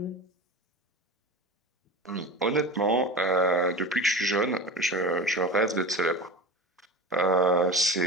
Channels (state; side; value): normal; both; correlation 0.31